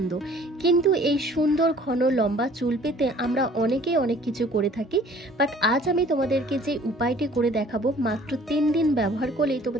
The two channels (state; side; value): normal; both; correlation 0.53